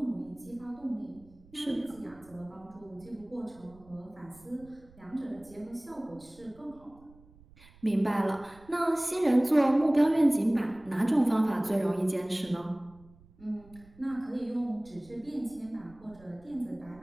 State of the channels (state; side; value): noise; right; rumble, 25 dB below the sound